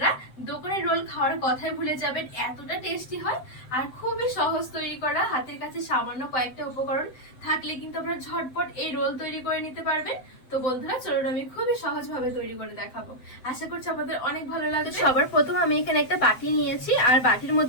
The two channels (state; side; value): late; right; 7.8 ms